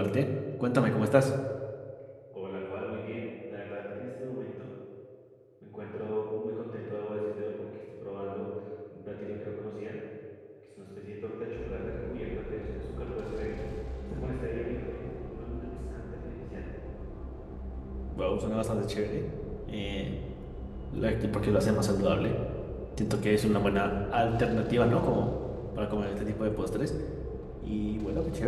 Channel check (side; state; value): both; identical; correlation 1.00